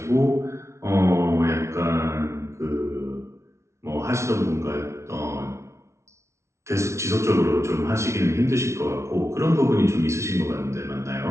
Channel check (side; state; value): left; late; 0.13 ms